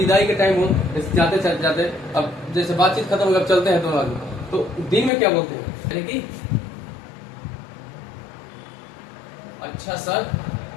के टाइम हो, जाते जाते अब जैसे बातचीत खत्म अगर चलते हैं दोनों आदमी, तो दिन में क्या बोलते हैं? यानी कि अच्छा सर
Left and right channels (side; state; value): right; drops out; at 5.1 s